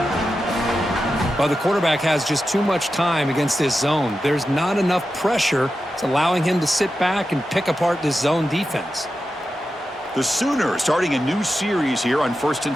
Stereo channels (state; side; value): normal; both; correlation 0.91